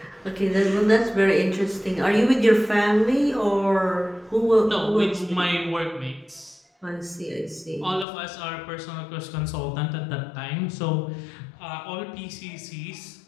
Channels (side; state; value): right; drops out; at 8.1 s